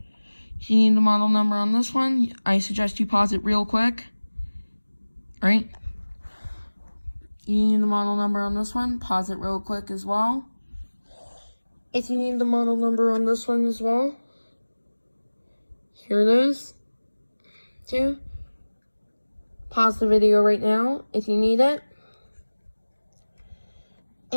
If you need the model number on this one, I suggest you pause it real quick. Alright? You need the model number on this one, pause it real quick as well. If you need the model number on this one as well, here it is. Too. Pause the video right now if you need it.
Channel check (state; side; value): inverted; both; correlation -1.00